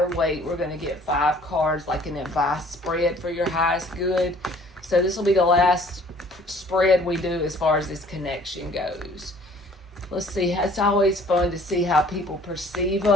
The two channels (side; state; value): both; normal; correlation 0.55